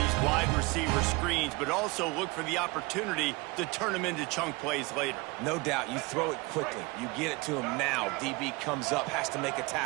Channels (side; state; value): left; quieter; 24.7 dB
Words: wide receiver screens, but also look for the opportunity to turn them into chunk plays later. No doubt. You throw it quickly. You get it to him now. DB comes up, has to make a